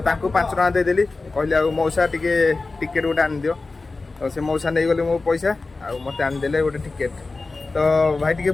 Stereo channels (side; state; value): right; quieter; 3.6 dB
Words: टଙ୍କା देदेली कहली आ मौसा टिके टिकेट गोटे आन दियो। तो से मौसा नहीं गले मो पैसा आ मते आन देले गोटे टिकेट। तो भाई टिके